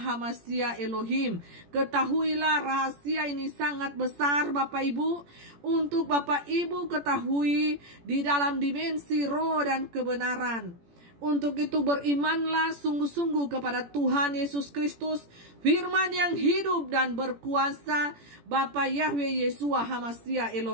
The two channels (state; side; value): late; left; 17 ms